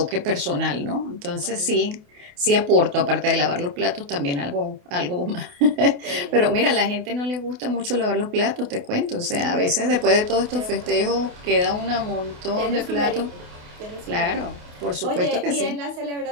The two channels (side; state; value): left; late; 28 ms